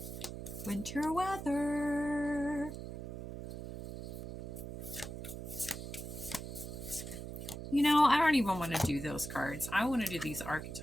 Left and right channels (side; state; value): right; noise; hum, 8 dB below the sound